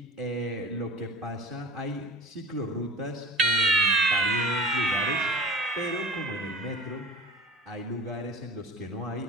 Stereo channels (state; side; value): normal; both; correlation 0.38